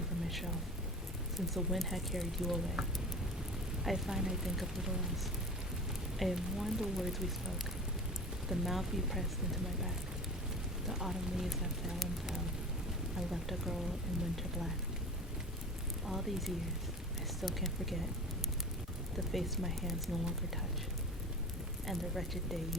from my shelf, since the wind had carried you away. I find I think of little else. I have mourned the words we spoke, the mouth you pressed into my back, the autumn leaves that fell and fell, and left a girl in winter black. All these years, I still can't forget the face my hands no longer touch, and the wretched day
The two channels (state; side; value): normal; both; correlation 0.37